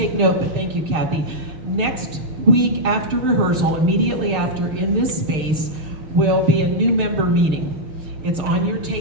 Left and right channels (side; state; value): left; late; 6.5 ms